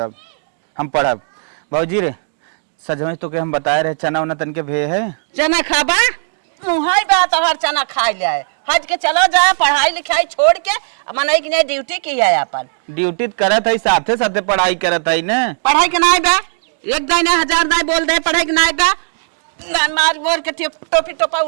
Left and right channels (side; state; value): left; silent; digital silence